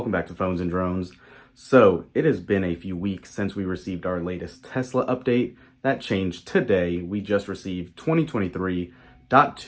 back to Phones and Drones. So it has been a few weeks since we received our latest Tesla update. That changed today. We just received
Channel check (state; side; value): identical; both; correlation 1.00